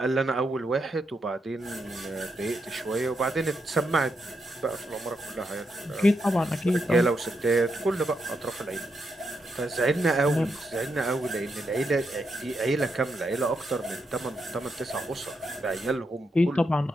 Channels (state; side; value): normal; both; correlation 0.82